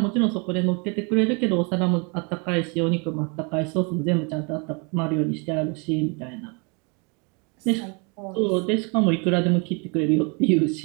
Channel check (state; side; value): quieter; left; 33.0 dB